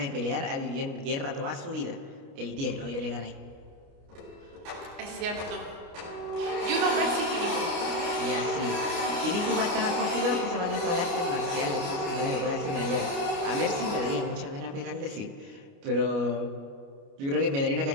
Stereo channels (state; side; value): late; left; 29 ms